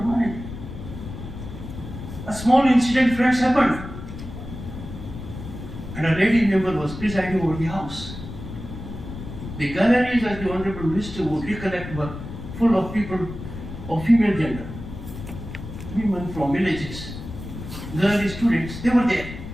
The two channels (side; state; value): left; noise; rumble, 10 dB below the sound